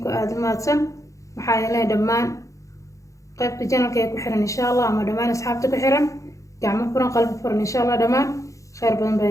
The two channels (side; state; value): right; late; 0.15 ms